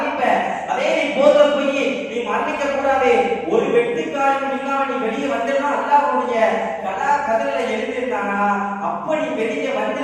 அதே நீ போர்ல போய் நீ மரணிக்க கூடாது, ஒரு வெட்டுக்காலம் இல்லாம நீ வெளியே வந்தா அல்லாஹ் உன்னுடைய கதலை எழுதிட்டானா அப்ப நீ வெளியே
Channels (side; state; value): both; identical; correlation 1.00